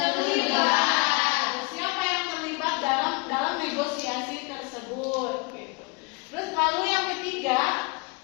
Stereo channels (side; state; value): right; quieter; 30.2 dB